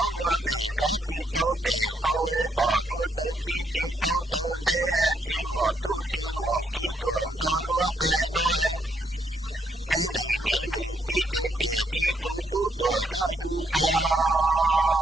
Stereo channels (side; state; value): both; normal; correlation 0.74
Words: 若你着急都得后把路都急都都得去莫都去莫几多着路还nói你是姐姐的都多鸟用才